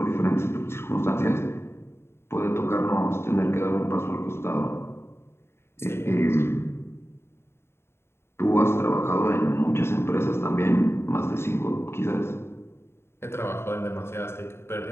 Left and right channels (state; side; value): late; right; 0.12 ms